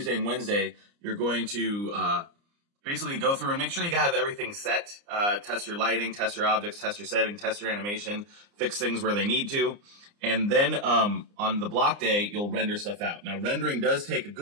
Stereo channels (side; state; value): left; late; 29 ms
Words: and Wednesday, you're going to basically go through and make sure you have everything set, test your lighting, test your objects, test your setting, test your animation, fix things where they need to. And then on the block day, you'll render stuff out. Now, rendering does take a